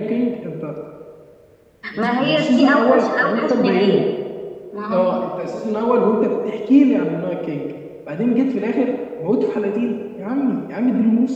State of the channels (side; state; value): both; identical; correlation 1.00